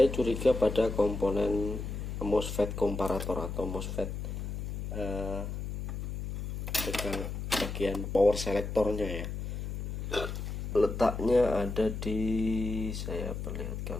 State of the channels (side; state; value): left; noise; hum, 5 dB below the sound